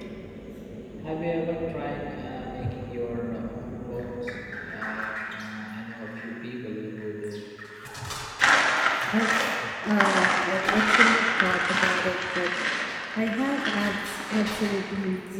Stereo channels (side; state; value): both; identical; correlation 1.00